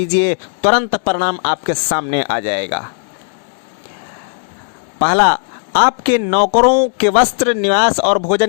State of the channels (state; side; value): silent; right; digital silence